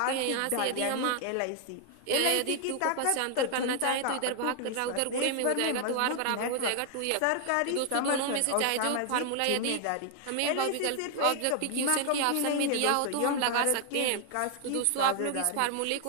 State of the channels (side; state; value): both; different; correlation 0.00